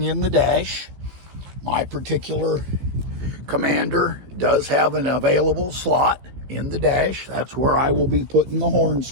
in the dash. My particular Commander does have an available slot in the dash. That's where I will be putting the horn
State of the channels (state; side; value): late; left; 15 ms